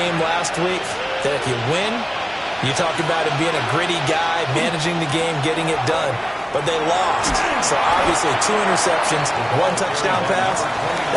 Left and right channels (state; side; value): identical; both; correlation 1.00